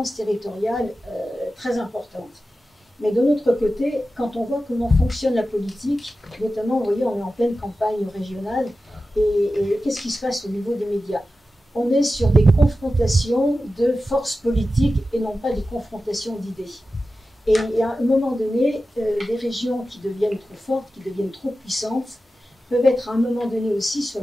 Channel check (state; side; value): normal; both; correlation 0.93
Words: territoriales très importantes. Mais de l'autre côté, quand on voit comment fonctionne la politique, notamment, vous voyez, on est en pleine campagne régionale, et qu'est-ce qui se passe au niveau des médias? On est sur des confrontations de forces politiques et non pas des confrontations d'idées. Et à un moment donné, des régions qui deviennent trop fortes, qui deviennent trop puissantes, peuvent être à un moment donné aussi sur